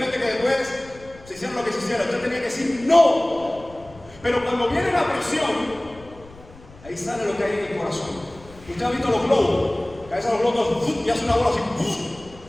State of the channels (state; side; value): noise; left; rumble, 22 dB below the sound